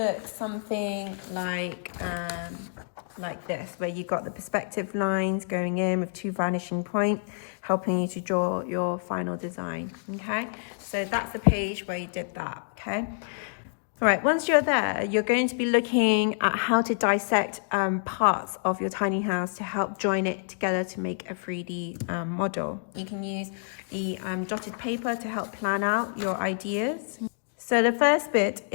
something like this, where you've got the perspective lines going in with two vanishing points, helping you to draw your final design. Okay, so that's the page where you did that. Okay, all right, once you're there, you're going to be looking at how to dissect parts of your tiny house to help join it together to make a 3D model. You can use the dotted paper to help plan out your ideas. So the first bit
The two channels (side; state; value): right; silent; digital silence